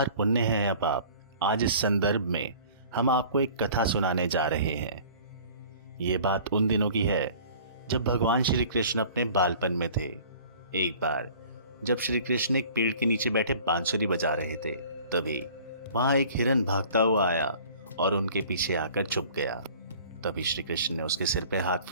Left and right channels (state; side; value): inverted; both; correlation -0.48